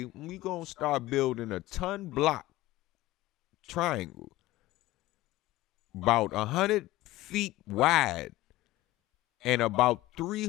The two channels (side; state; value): right; quieter; 17.3 dB